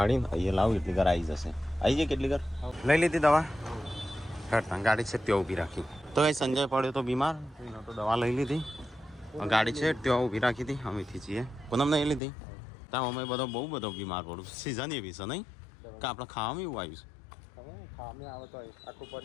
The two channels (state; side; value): drops out; right; at 12.2 s